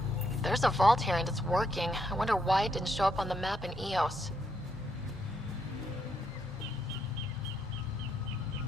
There's a vault here and it's working. I wonder why it didn't show up on the map in EOS.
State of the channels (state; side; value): normal; both; correlation 0.77